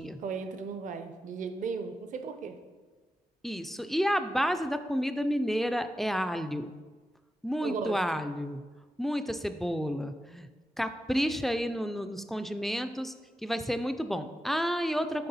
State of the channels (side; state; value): both; normal; correlation 0.90